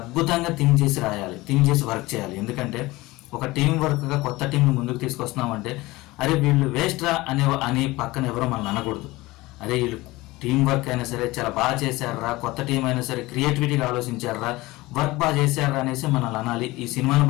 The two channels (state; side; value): quieter; right; 20.2 dB